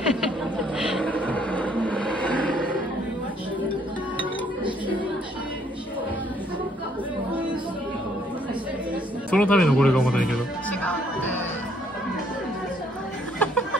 そのためのこれが重たいけど。違う。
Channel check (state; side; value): normal; both; correlation 0.66